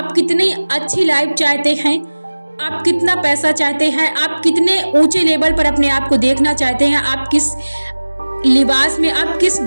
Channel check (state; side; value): inverted; both; correlation -1.00